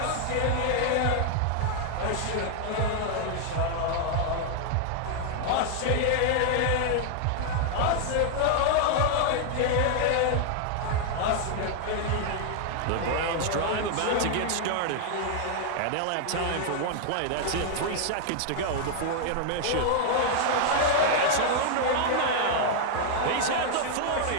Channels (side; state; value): both; different; correlation 0.00